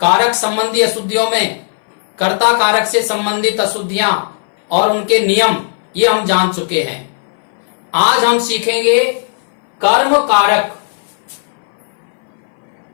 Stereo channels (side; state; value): right; silent; 61 dB below the other